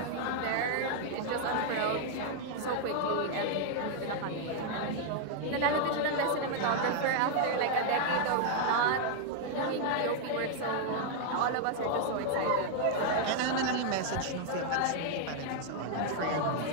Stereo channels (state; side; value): different; both; correlation 0.00